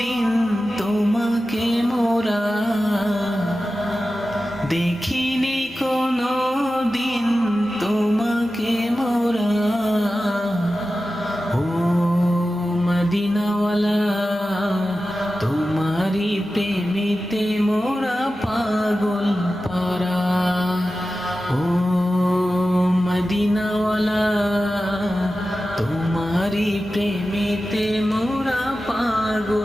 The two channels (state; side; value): normal; both; correlation 0.94